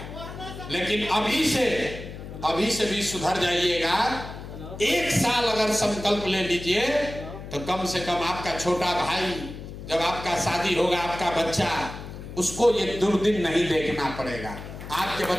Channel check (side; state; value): left; noise; hum, 11 dB below the sound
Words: लेकिन अभी से भी सुधर जाइएगा। 1 साल अगर संकल्प ले लीजिए तो कम से कम आपका छोटा भाई, जब आपका शादी होगा, आपका बच्चा, उसको ये दुर्दिन नहीं देखना पड़ेगा। आपके